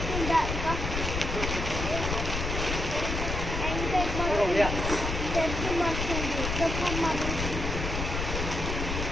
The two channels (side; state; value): left; noise; rumble, 3 dB below the sound